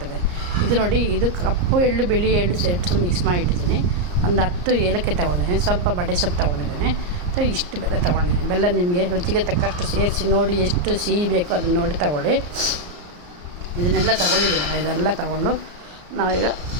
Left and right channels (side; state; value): left; late; 34 ms